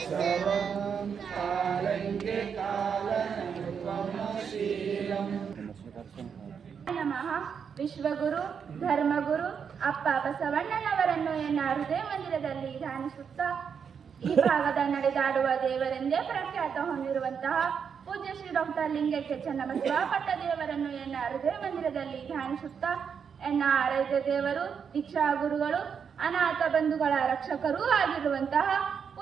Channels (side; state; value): left; quieter; 6.9 dB